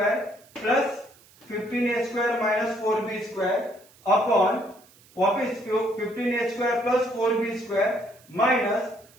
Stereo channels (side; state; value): right; noise; hiss, 27 dB below the sound